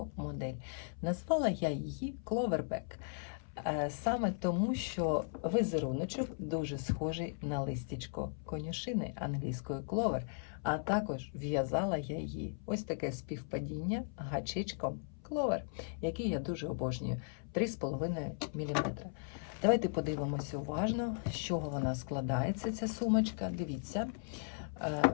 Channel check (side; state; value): right; silent; 53 dB below the other